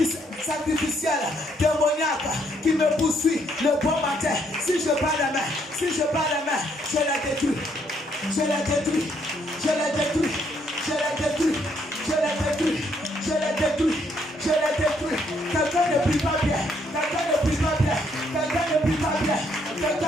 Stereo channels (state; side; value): normal; both; correlation 0.71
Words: sacrificiels, démoniaques qui me poursuivent le bon matin. Si je bats la main, je la détruis.